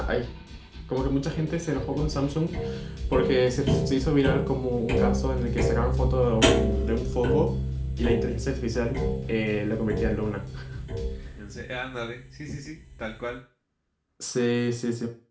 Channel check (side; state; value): both; identical; correlation 1.00